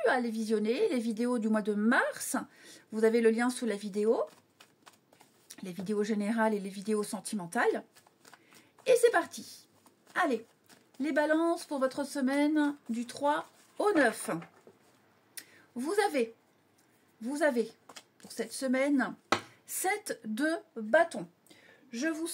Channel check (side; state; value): both; identical; correlation 1.00